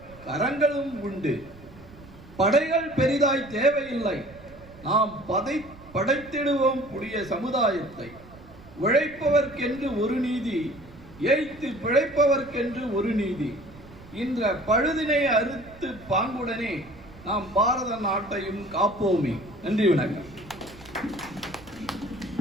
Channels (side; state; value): right; noise; rumble, 20 dB below the sound